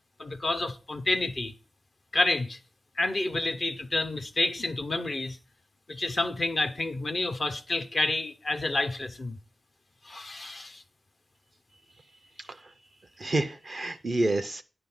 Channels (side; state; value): both; normal; correlation 0.93